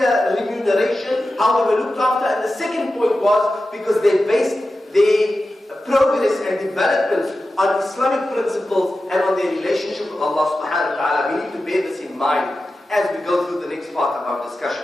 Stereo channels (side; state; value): both; normal; correlation 0.93